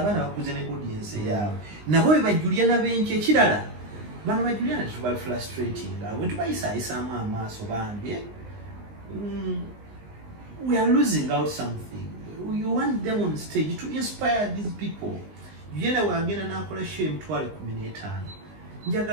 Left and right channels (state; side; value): late; left; 19 ms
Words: bakuze ne audience yaabwe nabo be Juliana benki ekirala bano ba Juliana tuba frustrating bwe tubayisaamu amaaso bambi we are losing out something. You want them on stage to inspire these people. Juliana wagenda n'akola show emitwalo 15